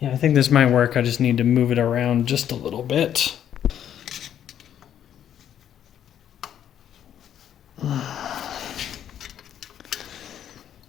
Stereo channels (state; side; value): quieter; right; 10.0 dB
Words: I think this might work. I just need to move it around just a little bit.